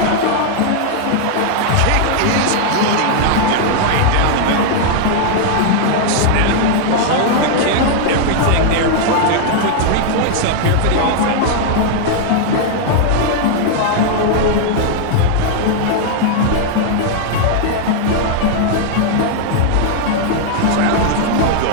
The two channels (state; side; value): different; both; correlation 0.00